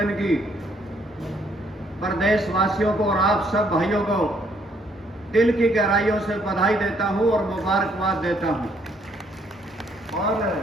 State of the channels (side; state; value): both; normal; correlation 0.68